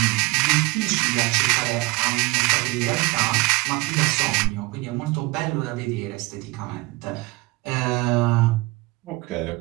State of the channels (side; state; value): left; quieter; 22.8 dB